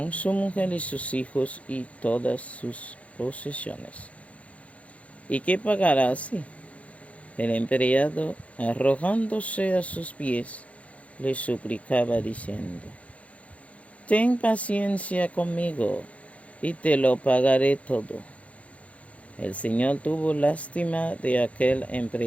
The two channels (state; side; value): late; right; 0.065 ms